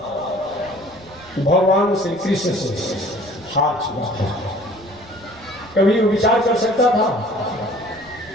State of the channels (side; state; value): right; noise; rumble, 23 dB below the sound